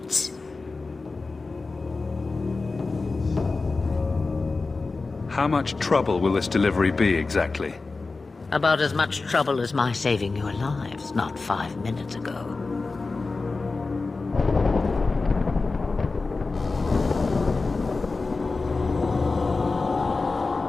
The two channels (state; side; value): quieter; right; 3.8 dB